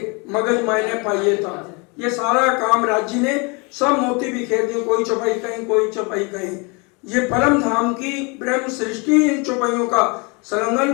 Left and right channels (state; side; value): quieter; right; 30.5 dB